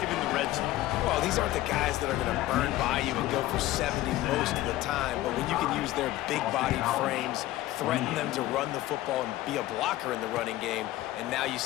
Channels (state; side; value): quieter; right; 15.8 dB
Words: in the red zone? Well, these aren't the guys that are going to burn by you and go for 70 most of the time, but when you can use their big-bodied frames, threaten them to run the football and be a blocker in the running game, and now you